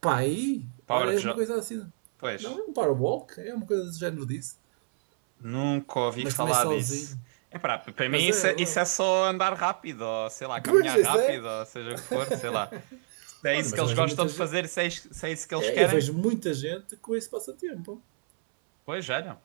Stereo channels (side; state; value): left; silent; 59 dB below the other